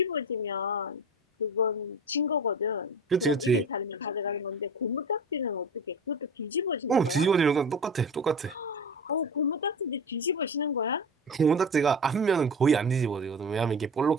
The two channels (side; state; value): both; normal; correlation 0.32